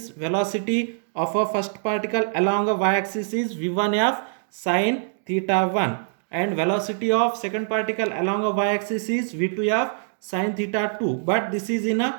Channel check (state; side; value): silent; left; digital silence